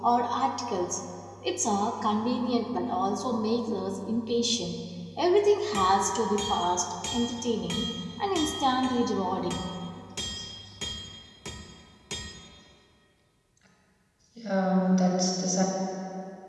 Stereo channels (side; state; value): both; identical; correlation 1.00